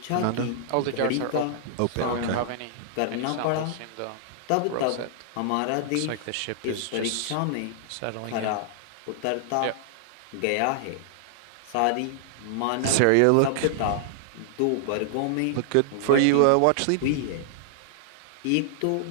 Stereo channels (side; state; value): both; different; correlation -0.01